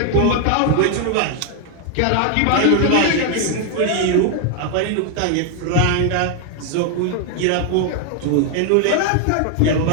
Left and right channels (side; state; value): both; different; correlation 0.00